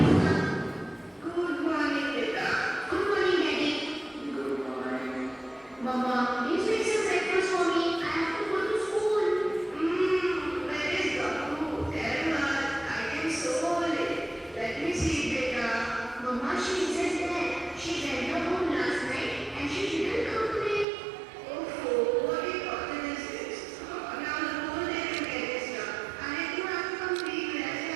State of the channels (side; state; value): left; drops out; at 20.9 s